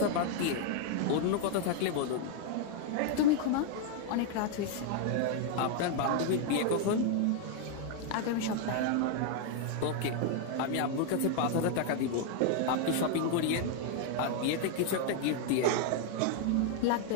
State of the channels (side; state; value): both; different; correlation 0.00